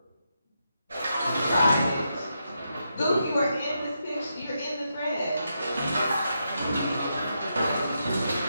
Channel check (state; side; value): inverted; both; correlation -0.83